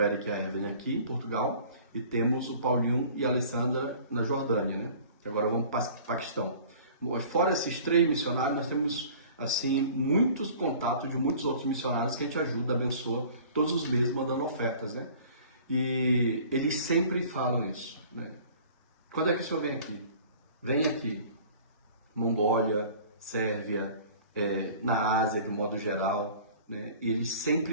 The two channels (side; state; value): both; inverted; correlation -0.47